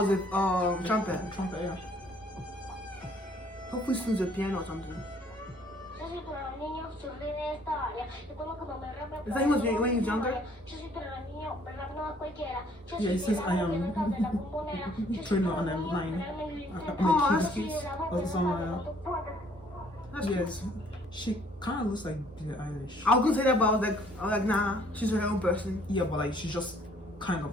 a trumpet. Trumpet, yeah. Hopefully soon the piano or something. Yo soy para los niños, soy de esta área. Recuerdo cuando me rapé. Is that he was when he was younger? Yo soy para los niños, pero no a cualquiera. Yo Yeah, it says I am Trueno and I'm 9. that's Nicki or somewhere. That's cool. Yes. She kind of looks like Billie Eilish. I was gonna say that, but I was like, nah, she's her own person. Yeah, but like she's just kind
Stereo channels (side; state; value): both; normal; correlation 0.61